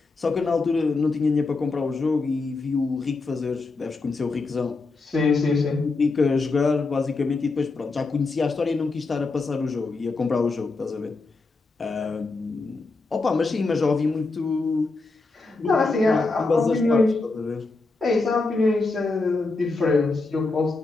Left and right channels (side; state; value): right; quieter; 3.7 dB